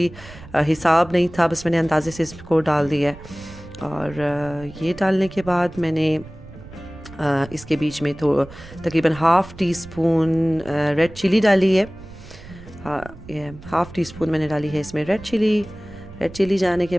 हिसाब नहीं था, बस मैंने अंदाज़े से इसको डाल दिया है। और ये डालने के बाद मैंने इसके बीच में तो तकरीबन 1/2 टीस्पून रेड चिली डाली है। ये 1/2 टीस्पून मैंने डाली है इसमें रेड चिली जाने के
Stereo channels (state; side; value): noise; right; rumble, 18 dB below the sound